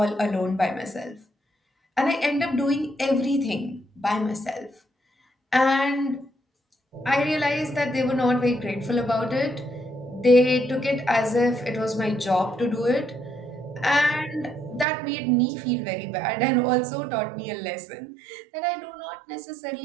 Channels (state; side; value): drops out; left; at 14.9 s